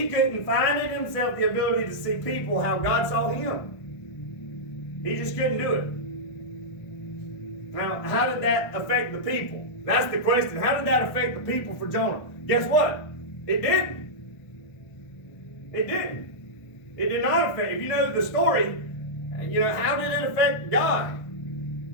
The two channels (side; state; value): right; late; 1.6 ms